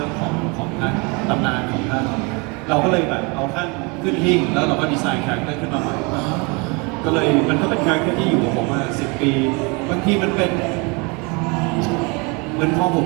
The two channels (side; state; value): left; quieter; 29.9 dB